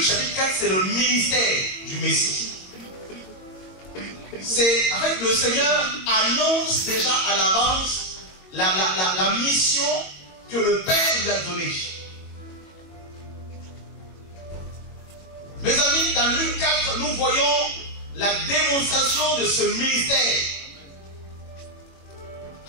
chapitre 4, c'est le ministère du Messie. C'est, en fait, le Seigneur annonce déjà à l'avance la mission que le Père lui a donnée. Mes amis, dans Luc 4, nous voyons la démonstration de ce ministère.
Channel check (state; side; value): late; right; 22 ms